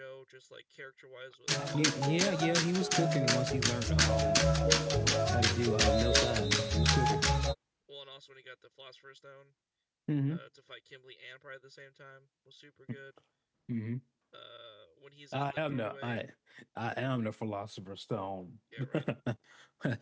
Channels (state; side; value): identical; both; correlation 1.00